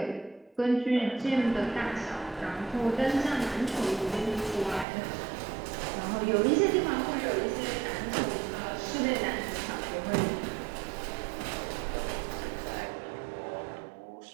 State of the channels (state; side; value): drops out; left; at 4.9 s